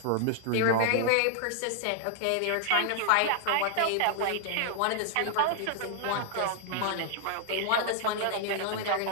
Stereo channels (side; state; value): both; different; correlation -0.01